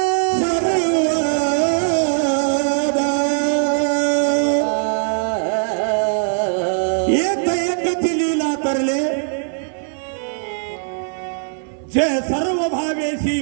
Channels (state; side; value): silent; left; 65 dB below the other